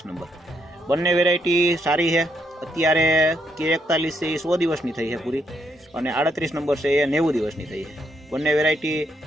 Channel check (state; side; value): normal; both; correlation 0.76